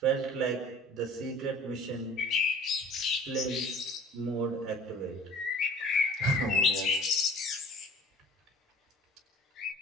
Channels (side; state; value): both; normal; correlation 0.46